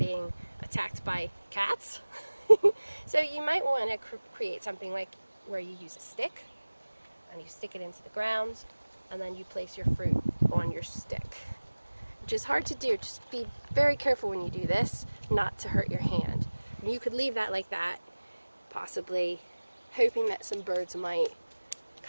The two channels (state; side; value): inverted; both; correlation -1.00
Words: attacked by cats. So you might want to create something like where you use a stick and you stick it into the ground, and then you place your fruit on your stick, which is hard to do. Just be very careful when you do this not to hurt your hand. And you could leave that like that, possibly hoping that some birds might